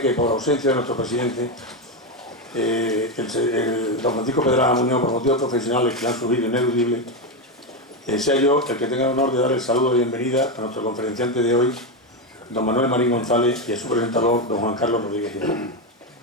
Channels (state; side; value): normal; both; correlation 0.10